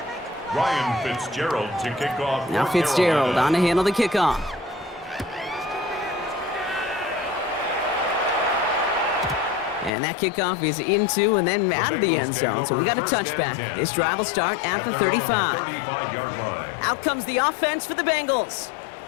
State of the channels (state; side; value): drops out; right; at 9.9 s